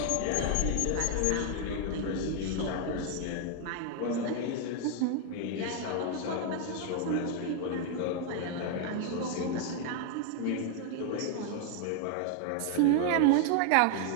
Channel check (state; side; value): different; both; correlation 0.00